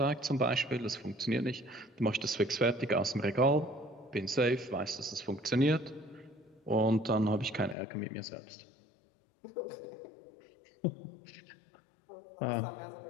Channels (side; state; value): right; drops out; at 7.8 s